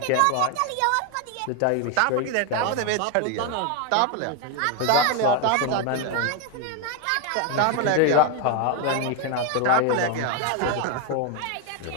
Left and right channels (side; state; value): both; different; correlation 0.01